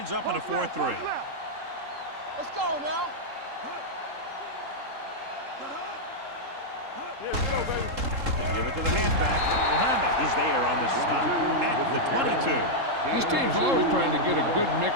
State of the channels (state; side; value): late; left; 3.7 ms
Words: up in a 4-3. Let's go now. They give it to the halfback. Muhammad is there on the stop at the 22. This team's always trying to get a good